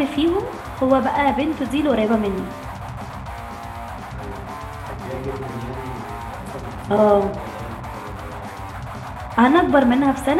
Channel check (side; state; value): both; identical; correlation 1.00